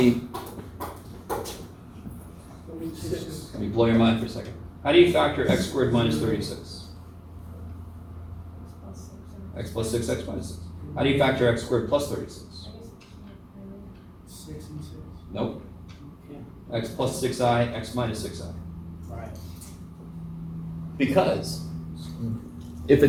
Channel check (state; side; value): identical; both; correlation 1.00